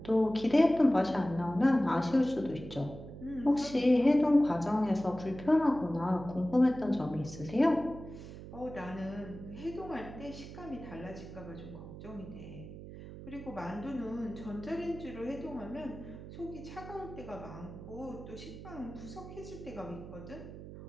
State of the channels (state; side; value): noise; right; hum, 13 dB below the sound